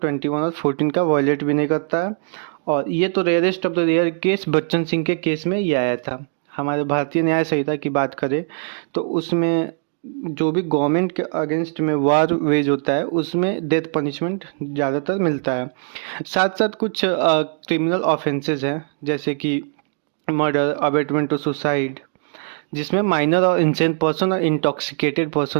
21 और 14 का वायलेट भी नहीं करता है। और ये तो rarest of the rare case Bachchan Singh के केस में ये आया था। हमारे भारतीय न्याय संहिता की बात करें तो उसमें जो भी गवर्नमेंट के अगेंस्ट में वार वेज होता है उसमें डेथ पनिशमेंट ज़्यादातर मिलता है। साथ साथ कुछ क्रिमिनल ऑफेंसेस हैं जैसे कि मर्डर, अबेटमेंट टू सुसाइड, जिसमें माइनर और इंसेंट पर्सन और इंटॉक्सिकेटेड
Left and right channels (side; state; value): left; silent; 58 dB below the other